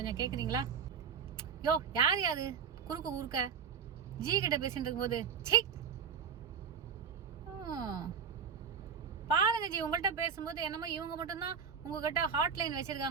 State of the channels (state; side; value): quieter; left; 6.7 dB